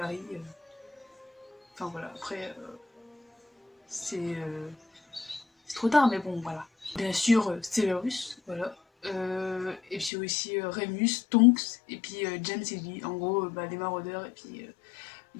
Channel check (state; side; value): drops out; right; at 10.1 s